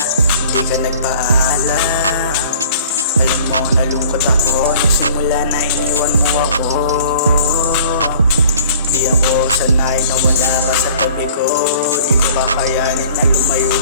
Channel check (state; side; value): inverted; both; correlation -0.50